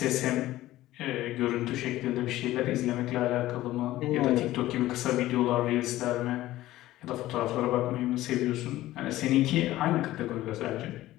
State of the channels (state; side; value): quieter; right; 15.7 dB